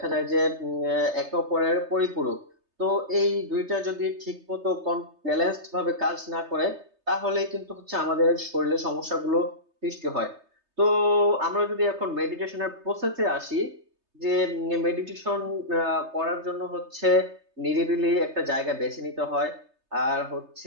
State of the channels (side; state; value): left; late; 3.3 ms